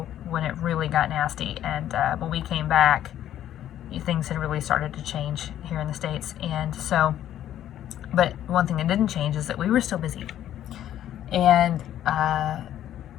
when it really got nasty, and when we came back, things had really started to change here in the States. And so, but one thing that didn't change is that we were still busy. And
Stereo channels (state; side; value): quieter; right; 11.6 dB